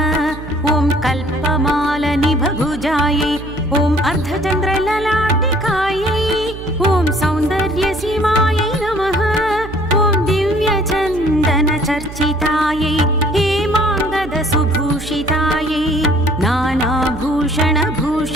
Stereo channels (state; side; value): noise; right; hum, 12 dB below the sound